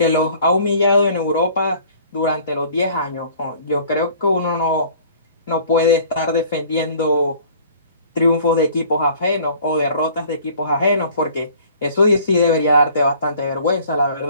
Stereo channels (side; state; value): both; inverted; correlation -0.51